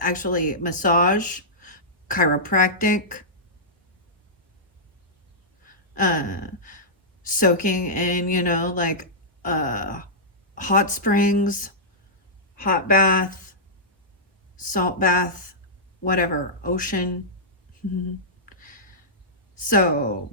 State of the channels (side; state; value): both; normal; correlation -0.14